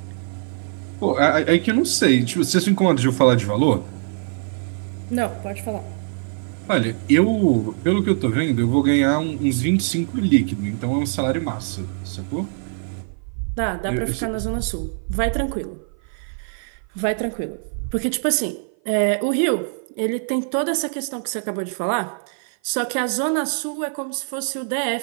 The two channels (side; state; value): left; silent; 55 dB below the other